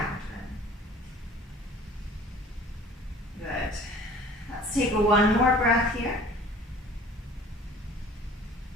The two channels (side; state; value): both; normal; correlation 0.48